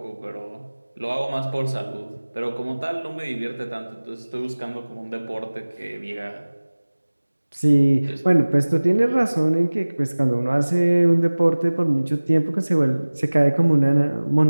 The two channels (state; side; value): inverted; both; correlation -1.00